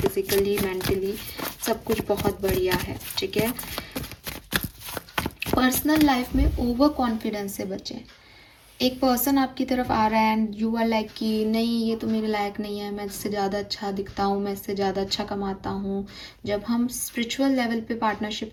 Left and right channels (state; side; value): identical; both; correlation 1.00